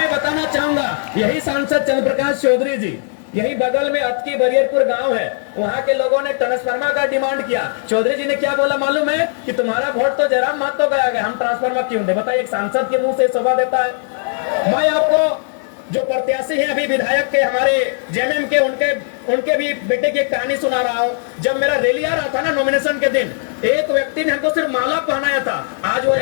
बताना चाहूंगा, यही सांसद चंद्र प्रकाश चौधरी जी, यही बगल में अतकी बरियरपुर गांव है, वहां के लोगों ने ट्रांसफार्मर का डिमांड किया। चौधरी जी ने क्या बोला मालूम है कि तुम्हारा वोट तो जयराम महतो गया है, हम ट्रांसफार्मर क्यों दे? बताइए, एक सांसद के मुंह से शोभा देता है? मैं आपको जो प्रत्याशी हैं अभी विधायक के हमारे जेएमएम के, उनके भी बेटे की एक कहानी सुना रहा हूं। जब मेरा रैली आ रहा था ना नॉमिनेशन के दिन, एक व्यक्ति ने हमको सिर्फ माला पहनाया था, आज वो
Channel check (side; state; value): right; silent; 67 dB below the other